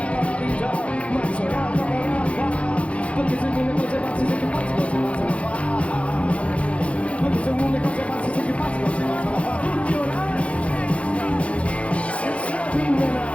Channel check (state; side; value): late; right; 0.063 ms